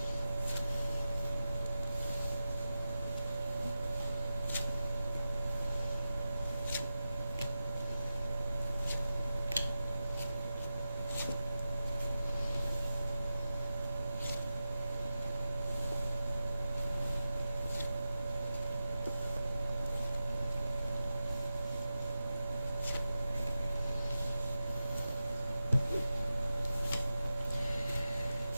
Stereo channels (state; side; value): inverted; both; correlation -0.91